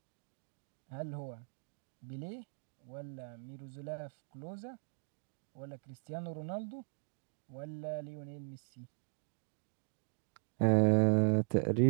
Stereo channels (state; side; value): silent; left; digital silence